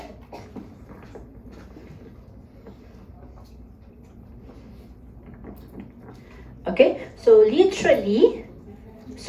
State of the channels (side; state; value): both; identical; correlation 1.00